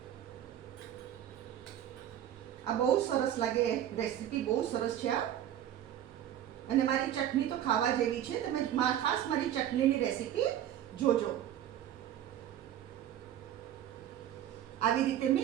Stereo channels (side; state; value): left; quieter; 11.1 dB